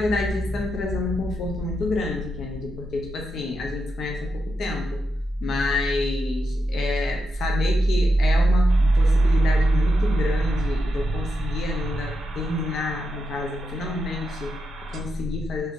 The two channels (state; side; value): normal; both; correlation 0.85